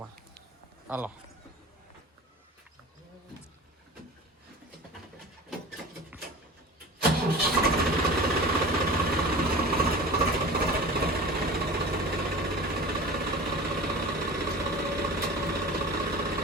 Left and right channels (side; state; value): both; normal; correlation 0.37